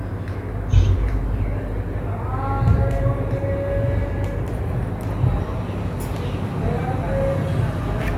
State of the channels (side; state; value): both; identical; correlation 1.00